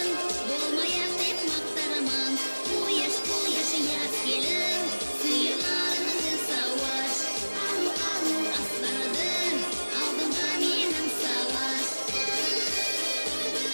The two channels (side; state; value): both; inverted; correlation -1.00